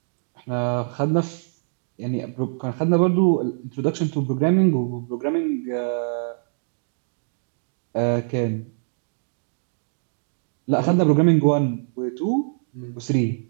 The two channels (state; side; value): silent; left; digital silence